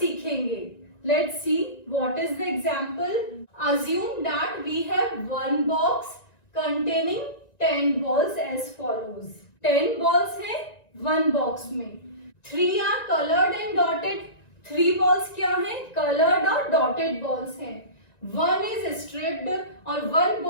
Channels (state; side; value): late; right; 1.9 ms